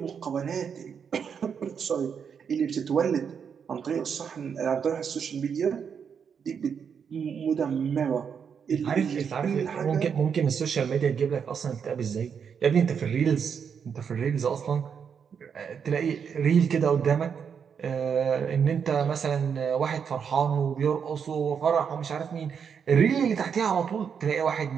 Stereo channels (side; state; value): left; quieter; 7.0 dB